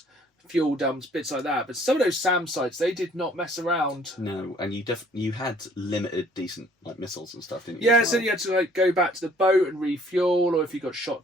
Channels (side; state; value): both; normal; correlation 0.59